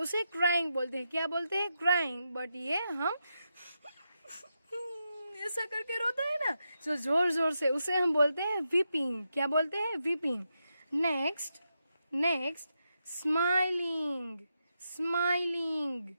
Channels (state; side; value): inverted; both; correlation -0.86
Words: उसे क्राइंग बोलते हैं। क्या बोलते हैं? क्राइंग। बट ये हम ऐसा करके रोता है ना, जो जोर जोर से, उसे हम बोलते हैं वीपिंग। क्या बोलते हैं? Weeping. Next, next, smiling, smiling,